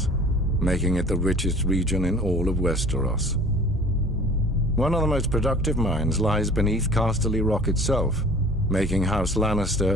making it the richest region in all of Westeros. One of the most productive mines lies beneath Casterly Rock itself, making House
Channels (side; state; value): both; normal; correlation 0.47